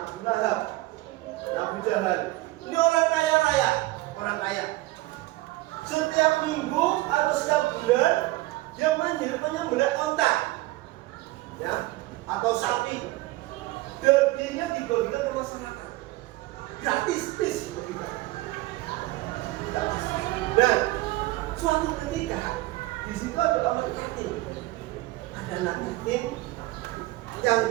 Abu Lahab, Abu Jahal. Ini orang kaya raya, orang kaya. Setiap minggu atau setiap bulan dia menyembelih onta, ya, atau sapi. Dagingnya dibagikan ke masyarakat.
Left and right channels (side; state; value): left; quieter; 19.0 dB